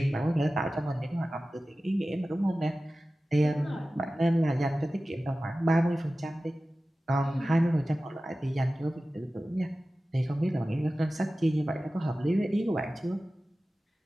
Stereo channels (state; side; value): normal; both; correlation 0.96